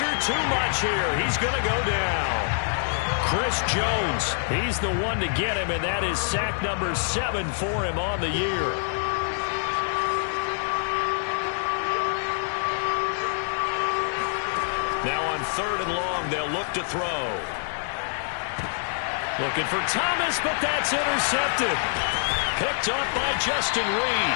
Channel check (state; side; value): silent; right; digital silence